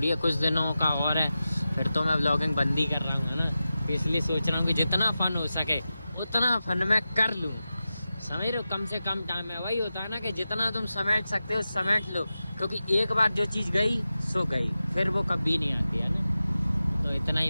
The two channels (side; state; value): both; inverted; correlation -0.93